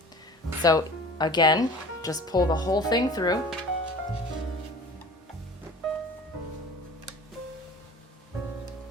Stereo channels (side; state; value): both; normal; correlation 0.42